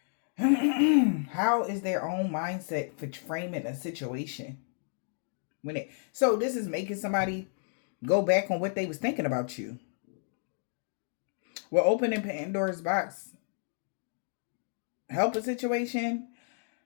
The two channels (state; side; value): silent; right; digital silence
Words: How is their own mindset for framing a situation? So this is making somebody go back on what they was thinking about you. We're opening Pandora's box. Help a situation.